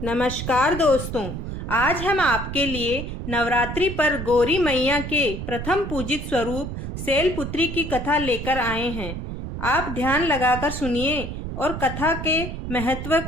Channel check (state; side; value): noise; right; rumble, 6 dB below the sound